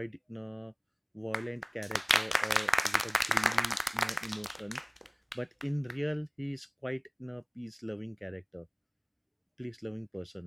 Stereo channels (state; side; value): identical; both; correlation 1.00